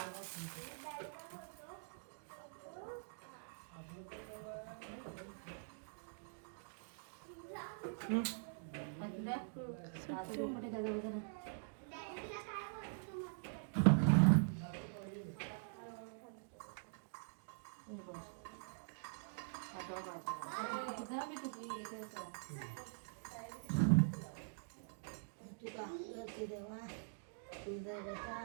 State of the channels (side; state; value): left; silent; digital silence